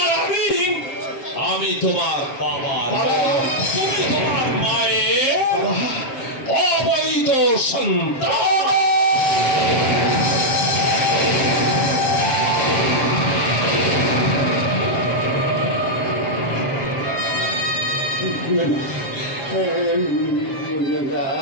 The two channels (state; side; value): late; right; 7.4 ms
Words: আমি তোমার বাবা, তুমি তোমার মায়ের অবৈধ সন্তান।